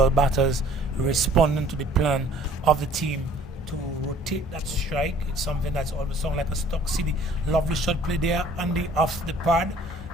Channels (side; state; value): both; normal; correlation 0.54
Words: batters responding to the plan of the team to rotate that strike. It's something that's always sound like a Stock City. Lovely shot play there, Andy, off the pad,